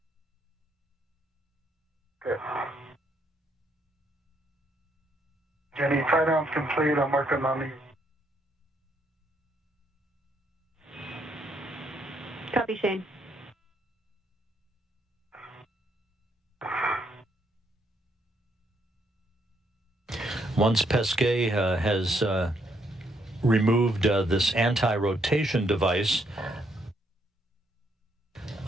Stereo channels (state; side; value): normal; both; correlation 0.73